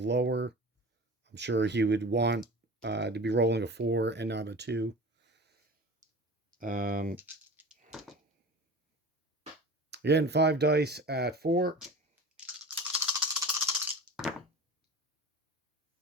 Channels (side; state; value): both; normal; correlation 0.36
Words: I'm sure he would want to be rolling a 4 and not a 2. Again, 5 dice at 4.